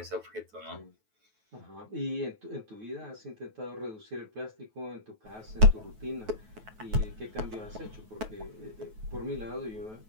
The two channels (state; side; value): late; left; 9.2 ms